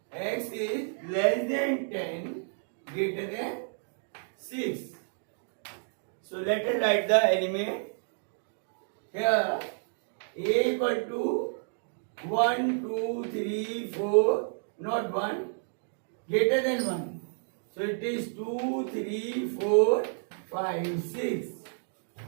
x is less than 10, greater than 6. So let us write the element. Here A equal to 1, 2, 3, 4, not 1, greater than 1. So it is 2, 3, 4, 5, 6.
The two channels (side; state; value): left; silent; digital silence